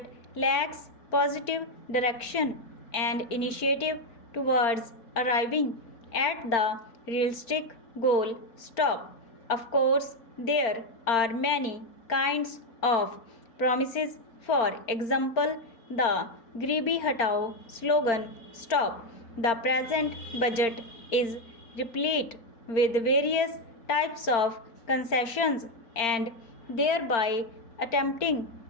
lacks positive direction and initiative towards arriving at the realistic goal. Stop. Of course, there are many kinds of promises. For example, the Gribi Hatao slogan. Stop. The present budget is replete with various types of concessions and thereby attempting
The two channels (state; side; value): late; right; 4.4 ms